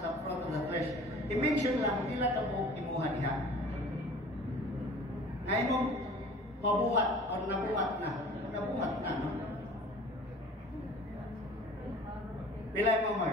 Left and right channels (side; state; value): both; normal; correlation 0.45